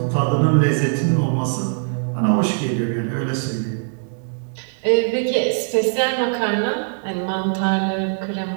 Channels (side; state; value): left; silent; digital silence